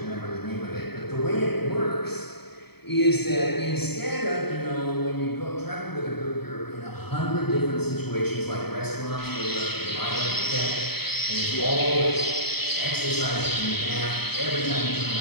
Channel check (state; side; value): late; right; 0.97 ms